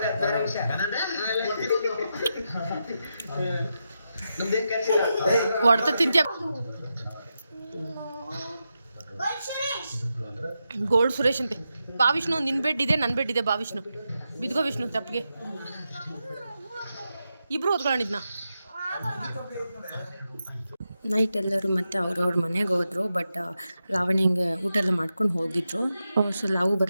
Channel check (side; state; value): both; inverted; correlation -0.87